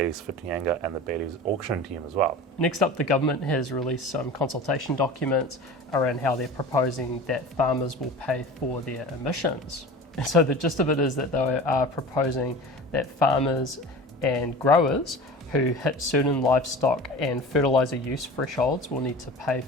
Whitianga and the Bayleys auction team as well. Next up, the government has released some consultation documents around how they're proposing that farmers will pay for their emissions. And so the gist of it is that they are proposing that farmers and growers who hit certain livestock and fertiliser use thresholds will need to pay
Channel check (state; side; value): normal; both; correlation 0.36